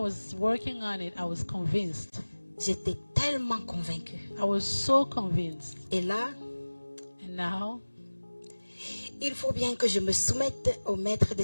working on it, I was convinced. J'étais tellement convaincue. I was so convinced. Et là, And now, il faut bien que je me soumette au maître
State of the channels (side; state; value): both; inverted; correlation -1.00